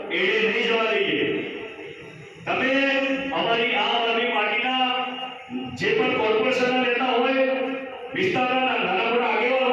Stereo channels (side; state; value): both; identical; correlation 1.00